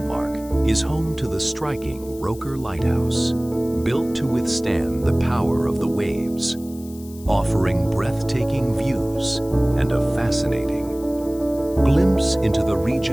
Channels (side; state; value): left; noise; hiss, 21 dB below the sound